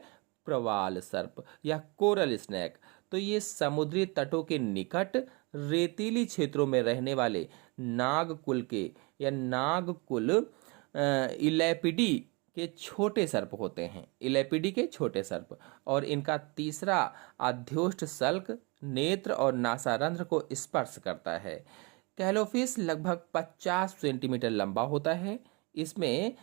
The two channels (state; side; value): quieter; left; 29.0 dB